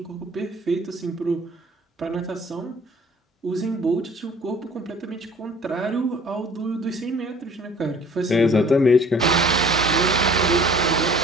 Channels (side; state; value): both; normal; correlation 0.51